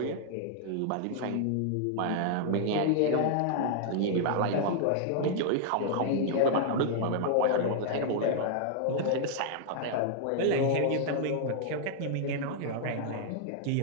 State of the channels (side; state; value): both; different; correlation -0.01